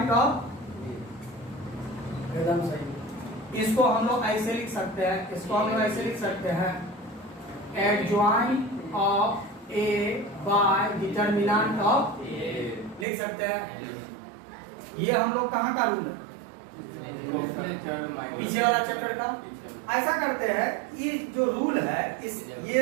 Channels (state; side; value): drops out; left; at 13.1 s